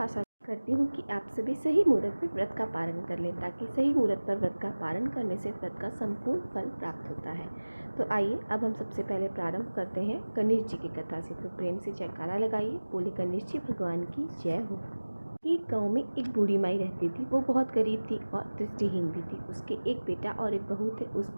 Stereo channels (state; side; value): inverted; both; correlation -1.00